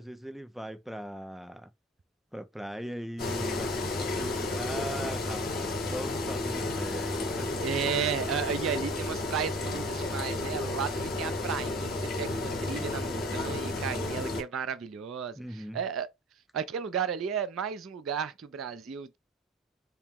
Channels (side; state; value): both; normal; correlation 0.43